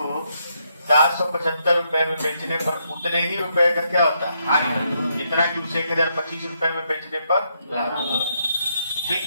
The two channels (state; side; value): inverted; both; correlation -0.77